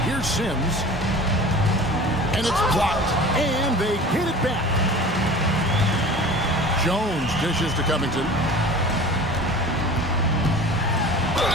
Here's Sims. And it's blocked. And they get it back. Jones dishes to Covington.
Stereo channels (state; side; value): normal; both; correlation 0.40